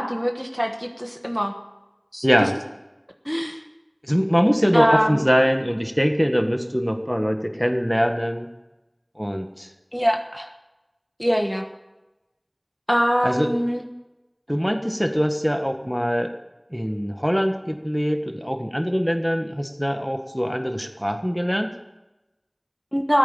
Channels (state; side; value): identical; both; correlation 1.00